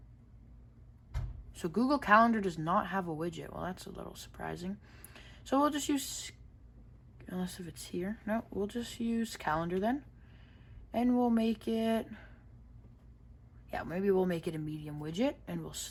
So Google Calendar does not have a widget. Well, that's a little surprising. So we'll just use, unless if it's here. No, we'll just use Calendar then. And we'll make it, yeah, maybe we'll make it a medium widget and we'll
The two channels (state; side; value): identical; both; correlation 1.00